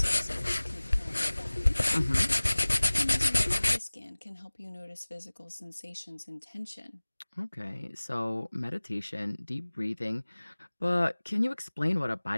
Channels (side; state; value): both; inverted; correlation -1.00